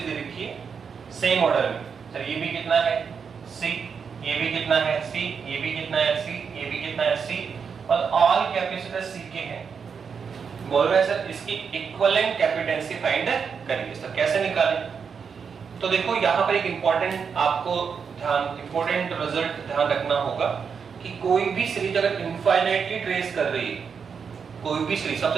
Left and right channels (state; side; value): quieter; left; 6.2 dB